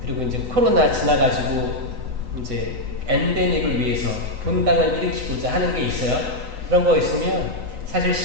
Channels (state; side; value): late; left; 3.8 ms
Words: 그리고 이제 코로나 지나가지고 이제 엔데믹을 위해서 본당을 일으키고자 하는 게 있어요. 그런 거 있으면 사실